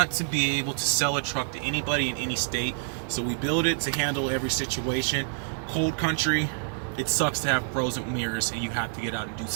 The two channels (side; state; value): left; silent; 60 dB below the other